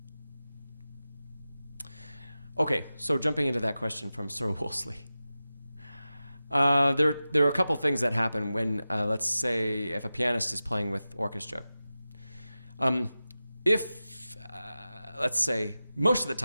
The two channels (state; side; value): inverted; both; correlation -0.94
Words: Okay, so jumping into that question from Sir Wolseley. There are a couple things that happen when, let's say, if a pianist is playing with orchestra. Let's say, most of the